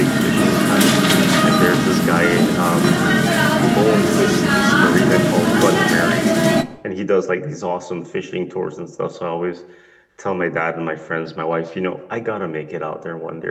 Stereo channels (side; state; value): both; identical; correlation 1.00